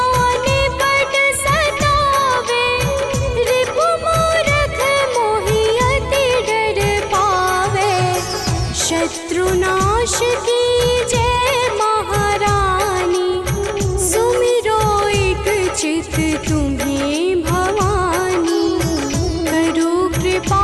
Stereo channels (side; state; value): both; identical; correlation 1.00